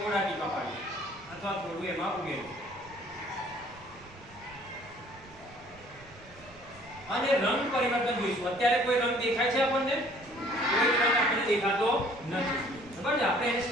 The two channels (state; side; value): noise; right; rumble, 22 dB below the sound